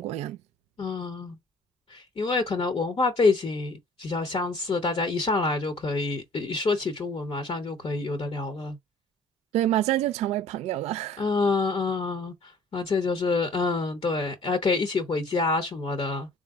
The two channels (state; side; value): normal; both; correlation 0.53